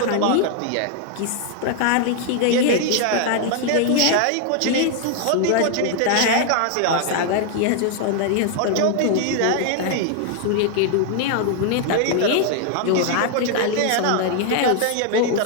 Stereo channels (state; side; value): different; both; correlation 0.00